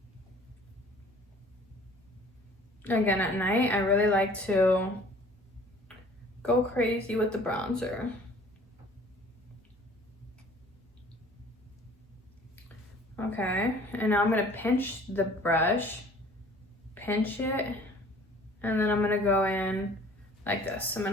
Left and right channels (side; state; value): both; normal; correlation 0.51